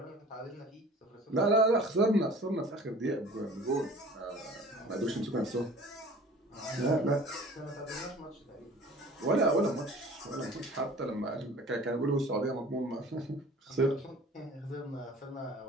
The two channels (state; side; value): normal; both; correlation 0.46